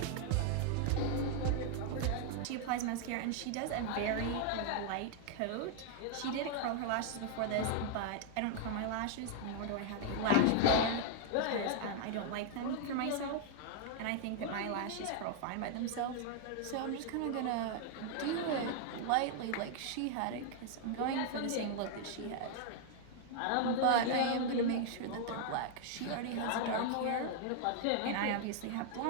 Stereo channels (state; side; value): different; both; correlation 0.00